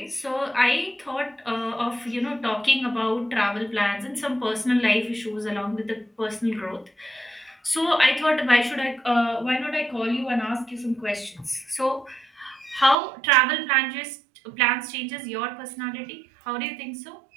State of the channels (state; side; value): drops out; left; at 13.0 s